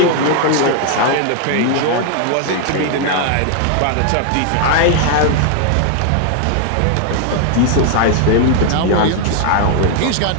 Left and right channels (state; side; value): different; both; correlation 0.00